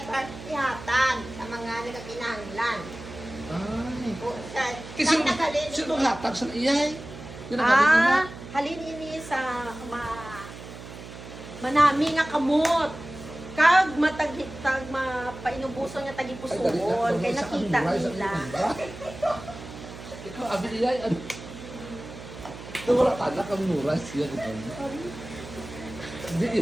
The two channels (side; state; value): right; noise; hum, 13 dB below the sound